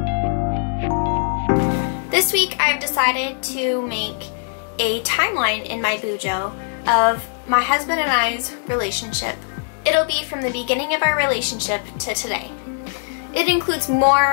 This week I've decided to make a timeline in my Bujo of my husband and I's relationship. It'll be from the beginning of our relationship to today. It includes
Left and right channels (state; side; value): silent; right; digital silence